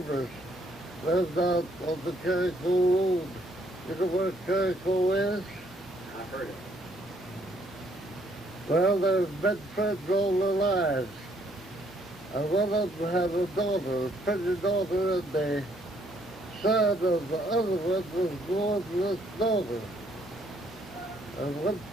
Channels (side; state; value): both; normal; correlation 0.68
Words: lived out on the Carico Road. You know where Carico is? I've heard it. Well, they've been friends all their lives. And one of them had a daughter, a pretty daughter, and the son of the other one was born to this daughter. And one